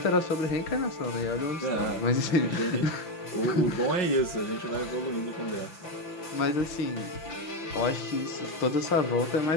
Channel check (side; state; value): right; late; 5.8 ms